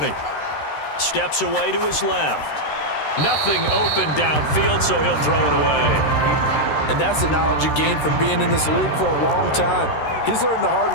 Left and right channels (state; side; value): late; right; 13 ms